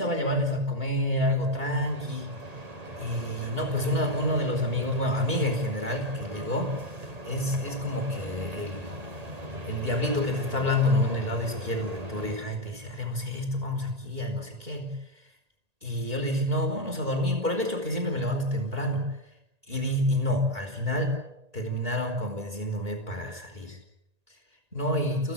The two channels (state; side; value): late; left; 1.8 ms